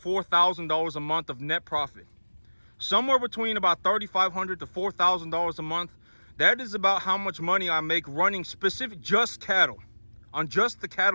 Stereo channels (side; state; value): both; inverted; correlation -1.00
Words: a month of net profit. Somewhere between about $3,500 to $4,000 a month. That is about how much money I make running specific just cattle. On just the